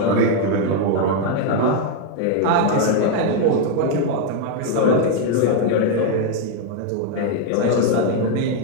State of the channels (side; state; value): both; different; correlation 0.01